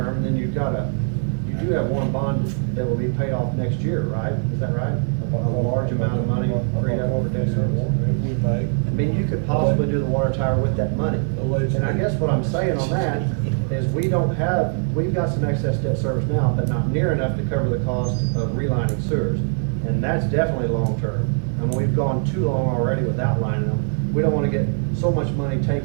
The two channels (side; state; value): left; silent; 56 dB below the other